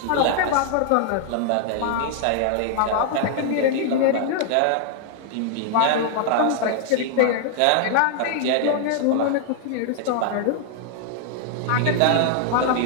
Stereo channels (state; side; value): different; both; correlation -0.01